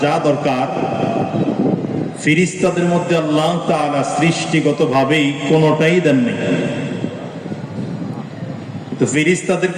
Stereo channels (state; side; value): identical; both; correlation 1.00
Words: যা দরকার ফেরেশতাদের মধ্যে আল্লাহ তাআলা সৃষ্টিগতভাবেই কোনোটাই দেননি। তো